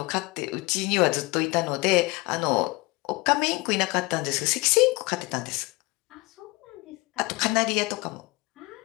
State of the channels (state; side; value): quieter; right; 24.7 dB